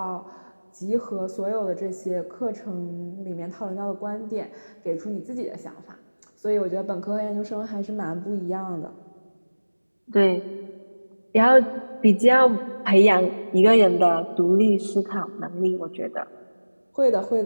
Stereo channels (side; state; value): both; inverted; correlation -1.00